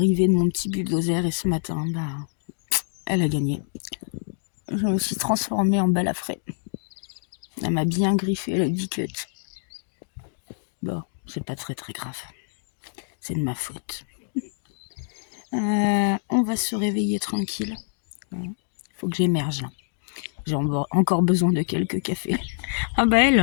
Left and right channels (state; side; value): silent; right; digital silence